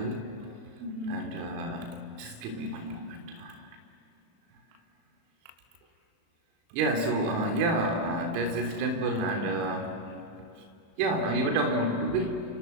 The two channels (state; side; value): late; left; 36 ms